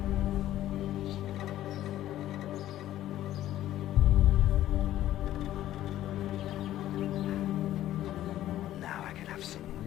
Now I can have some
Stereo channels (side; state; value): right; quieter; 13.3 dB